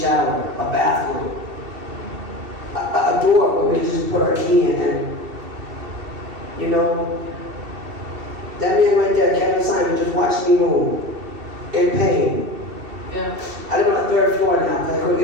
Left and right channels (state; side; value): late; left; 2.7 ms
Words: a bathroom, a door where we can just put our key in, and, you know, that man right there, Kevin Simon, just watched me move in pain. Yeah. I live on the 3rd floor now because I couldn't